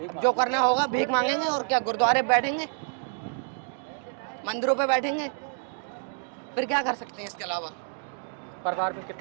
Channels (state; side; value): silent; left; 59 dB below the other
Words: जो करना होगा भीख मांगेंगे और क्या, गुरुद्वारे बैठेंगे, मंदिरों पे बैठेंगे, फिर क्या कर सकते हैं इसके अलावा? परिवार में